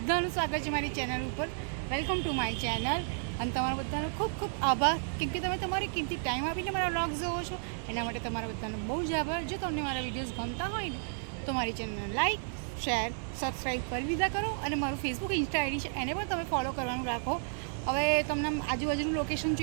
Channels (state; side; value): silent; left; 56 dB below the other